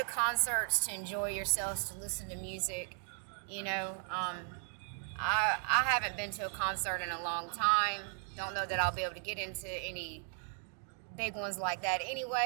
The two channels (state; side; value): silent; left; 54 dB below the other